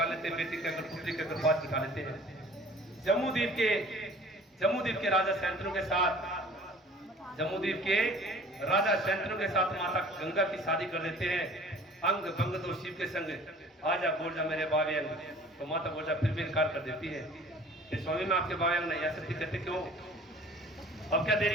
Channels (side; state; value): both; normal; correlation 0.48